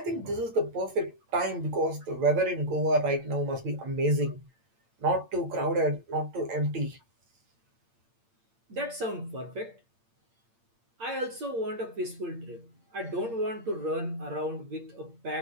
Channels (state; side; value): late; left; 8.8 ms